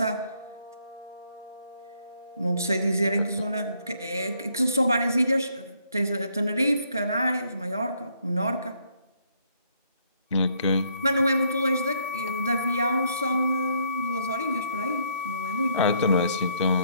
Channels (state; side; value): inverted; both; correlation -0.69